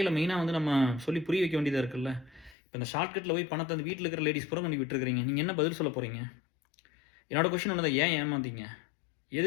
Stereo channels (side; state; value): right; drops out; at 2.6 s